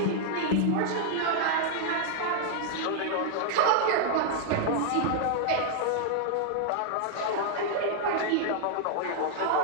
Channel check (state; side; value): different; both; correlation -0.01